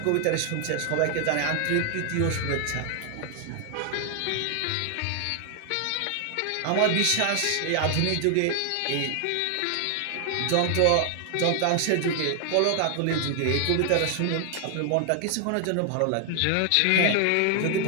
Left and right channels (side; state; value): both; different; correlation 0.00